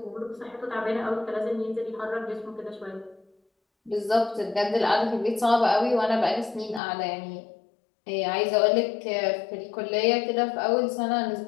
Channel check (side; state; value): right; drops out; at 6.8 s